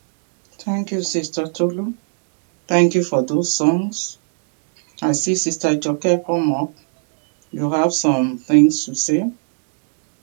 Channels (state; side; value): silent; left; digital silence